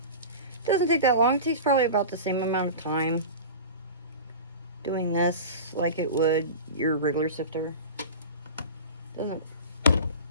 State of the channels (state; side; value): inverted; both; correlation -0.32